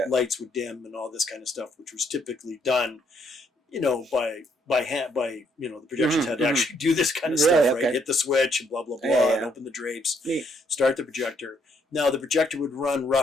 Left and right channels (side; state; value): both; normal; correlation 0.71